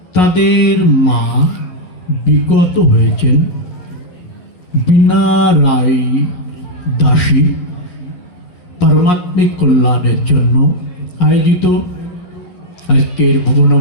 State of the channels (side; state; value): right; late; 11 ms